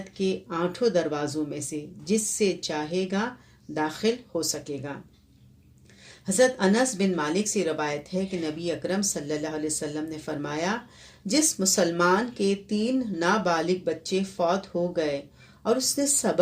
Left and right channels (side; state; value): both; identical; correlation 1.00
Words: کے 8 دروازوں میں سے جس سے چاہے گا داخل ہو سکے گا۔ حضرت انس بن مالک سے روایت ہے کہ نبی اکرم صلی اللہ علیہ وسلم نے فرمایا، جس مسلمان کے 3 نابالغ بچے فوت ہو گئے اور اس نے